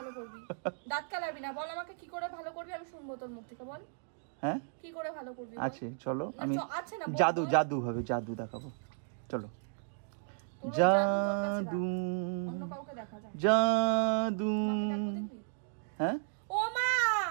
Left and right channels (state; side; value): silent; left; digital silence